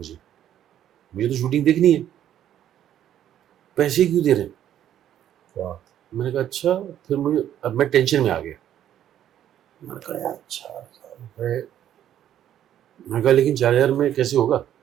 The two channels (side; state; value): left; quieter; 11.0 dB